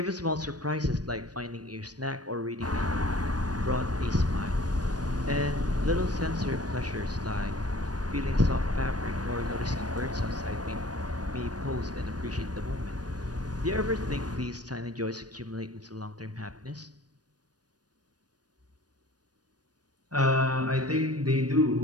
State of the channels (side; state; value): left; late; 0.69 ms